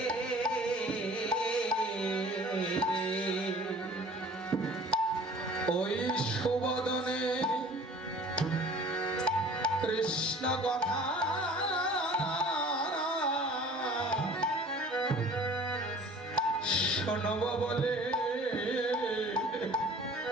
ওই সুবদনে কৃষ্ণ কথা শোনব বলে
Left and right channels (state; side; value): normal; both; correlation 0.48